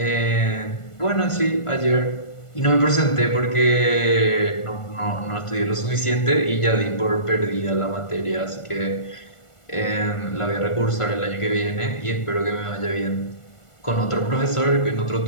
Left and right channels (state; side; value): late; right; 1.4 ms